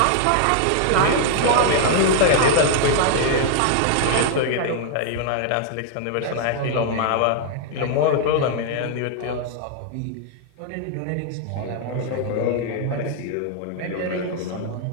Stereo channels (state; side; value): different; both; correlation 0.00